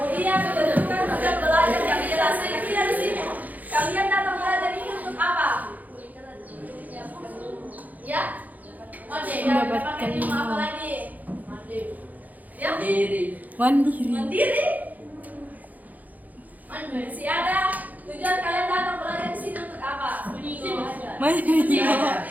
ketentukan tugas belajar yang jelas. Kira-kira di sini kalian datang belajar ini untuk apa? Ya? Mendapatkan ilmu apa lagi? Ya? mandiri. Mandiri? Si ada tujuan kalian datang belajar di sini untuk apa? Masih. Ya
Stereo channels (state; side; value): late; left; 0.080 ms